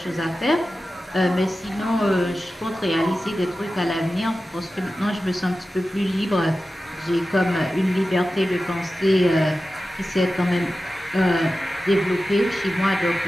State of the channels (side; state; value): both; normal; correlation 0.94